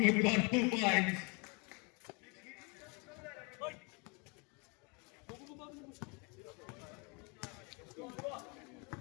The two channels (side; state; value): right; quieter; 32.0 dB